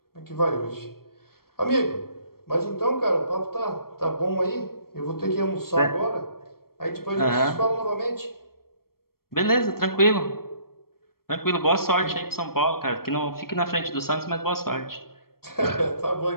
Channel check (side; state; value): right; late; 0.93 ms